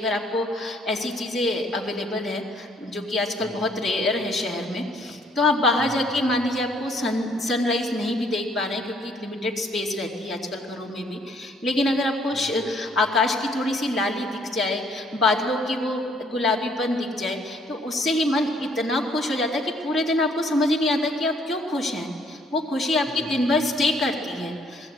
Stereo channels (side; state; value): both; normal; correlation 0.64